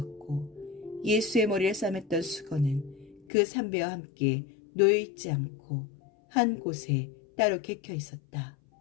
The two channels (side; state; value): right; drops out; at 3.2 s